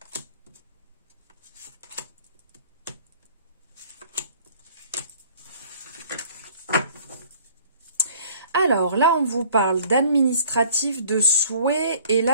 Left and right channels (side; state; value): both; inverted; correlation -0.54